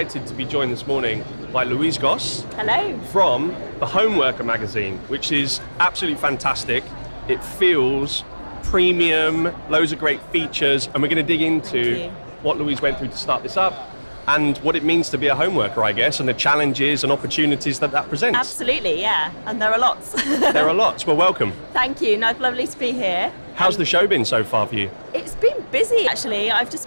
to be joined this morning by Louise Goss. Hello. From the Homeworker magazine, which is absolutely fantastic. It feels premium, loads of great features, and we're going to dig into what Louise went through to start this up and what it means to be a homeworker, I guess, and the challenges and opportunities that presents. Absolutely, yeah, and there are lots. There are lots. Well, welcome. Thank you. No, it's lovely to be here. How's the show been so far for you? It's been busy, actually. I've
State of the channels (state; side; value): inverted; both; correlation -1.00